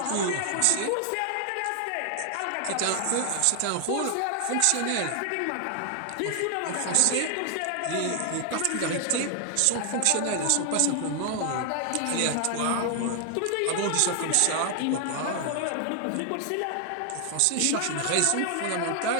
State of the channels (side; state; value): both; different; correlation 0.00